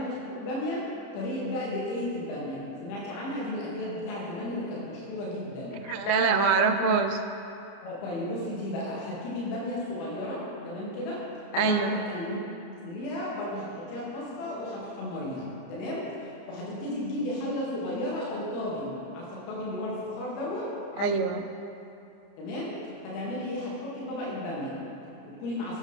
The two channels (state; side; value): late; right; 29 ms